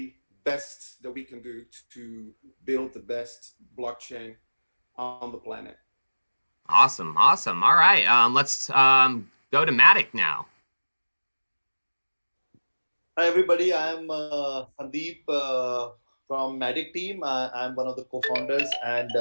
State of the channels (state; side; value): inverted; both; correlation -1.00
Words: best that we can do to build the best blockchain on the planet. Awesome. All right, let's go to Matic now. Hi everybody, I'm Sandeep from Matic team. I'm one of the co-founders and